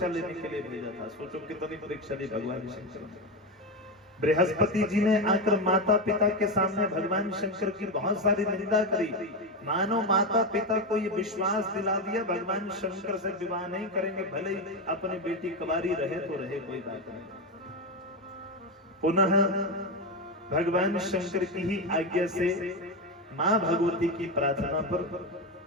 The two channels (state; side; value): normal; both; correlation 0.14